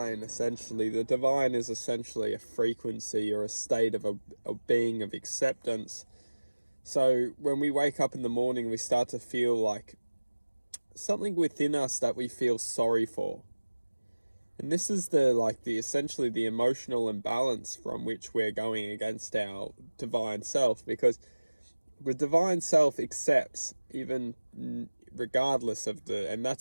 Essentially, the divine is essentially a frequency or a state of a being of acceptance. So when we wake up in the morning, we start to feel like something within us that we feel sorry for. And this is essentially the emotional imbalance from which we're going against our divine self, because the divine self accepts even regardless of and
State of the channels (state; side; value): inverted; both; correlation -1.00